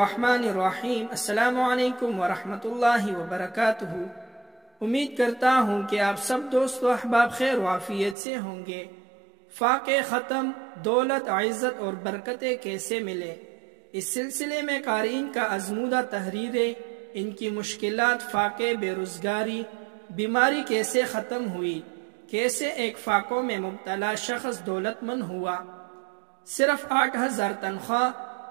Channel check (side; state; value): left; drops out; at 8.2 s